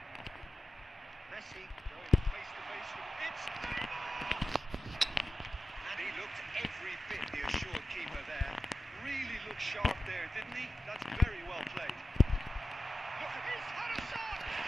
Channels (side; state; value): both; normal; correlation 0.92